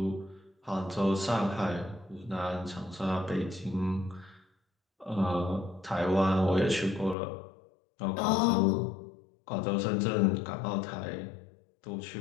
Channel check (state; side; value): drops out; right; at 7.2 s